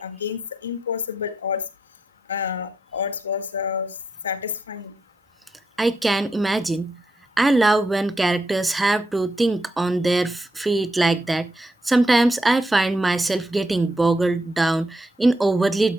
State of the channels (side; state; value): both; normal; correlation 0.82